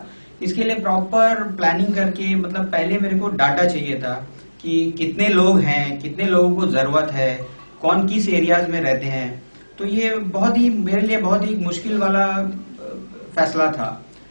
इसके लिए प्रॉपर प्लानिंग करके, मतलब पहले मेरे को डाटा चाहिए था कि कितने लोग हैं, कितने लोगों को जरूरत है, कौन किस एरियाज में रहते हैं। तो ये बहुत ही मेरे लिए बहुत ही मुश्किल वाला फैसला था,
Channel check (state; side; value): inverted; both; correlation -1.00